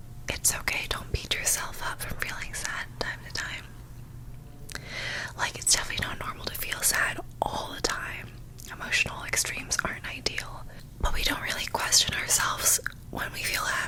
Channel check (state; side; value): identical; both; correlation 1.00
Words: it's okay. Don't beat yourself up from feeling sad time to time. Like, it's definitely not normal to feel sad all the time. Emotional extremes aren't ideal. But we don't really question ourselves when we feel